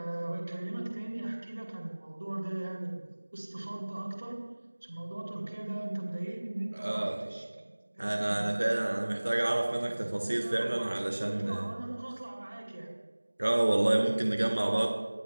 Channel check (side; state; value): both; inverted; correlation -1.00